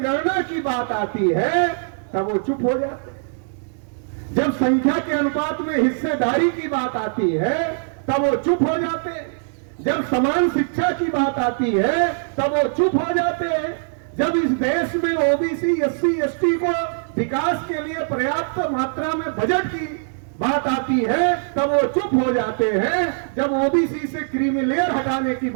की बात आती है तब वो चुप हो जाते हैं। जब संख्या के अनुपात में हिस्सेदारी की बात आती है तब वो चुप हो जाते हैं। जब समान शिक्षा की बात आती है तब वो चुप हो जाते हैं। जब इस देश में ओबीसी एससी एसटी को विकास के लिए पर्याप्त मात्रा में बजट की बात आती है तब वो चुप हो जाते हैं। जब ओबीसी से क्रीमी लेयर हटाने की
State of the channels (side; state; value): left; silent; digital silence